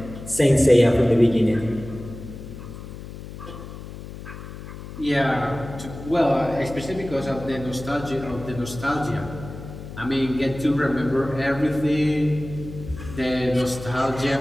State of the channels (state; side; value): noise; left; hum, 12 dB below the sound